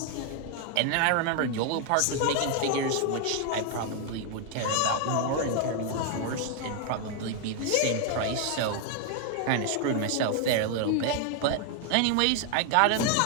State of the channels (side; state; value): both; different; correlation 0.00